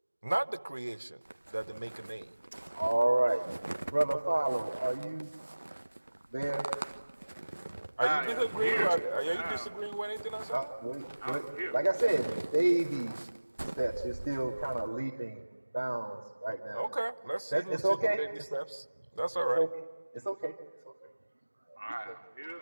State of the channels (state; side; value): inverted; both; correlation -1.00